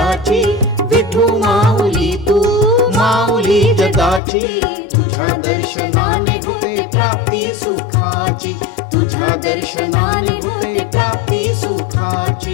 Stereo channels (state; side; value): drops out; right; at 4.2 s